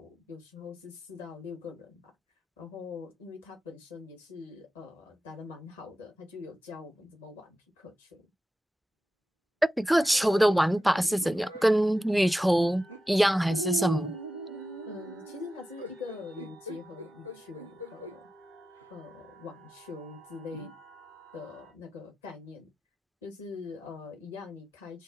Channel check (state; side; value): normal; both; correlation 0.92